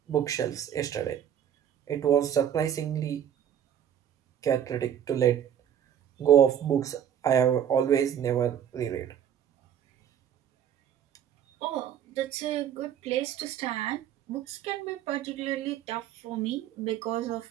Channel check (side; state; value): left; quieter; 9.8 dB